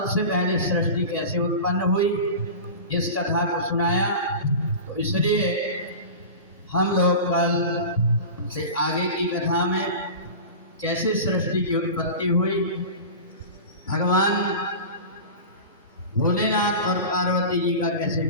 पहले सृष्टि कैसे उत्पन्न हुई इस कथा को सुनाया। तो इसलिए हम लोग कल से आगे की कथा में कैसे सृष्टि की उत्पत्ति हुई, भगवान भोलेनाथ और पार्वती जी का कैसे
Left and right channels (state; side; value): inverted; both; correlation -0.31